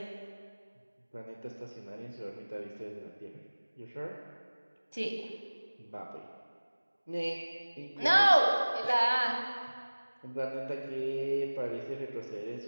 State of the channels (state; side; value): inverted; both; correlation -1.00